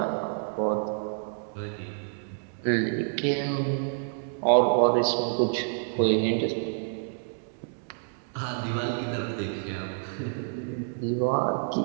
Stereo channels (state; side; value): silent; left; digital silence